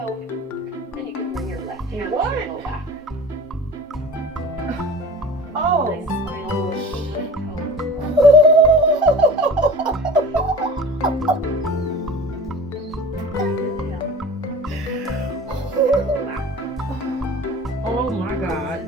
and you can bring your left hand to your low back. Oh. Nice spinal rotation toe. Oh my God.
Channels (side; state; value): both; normal; correlation 0.38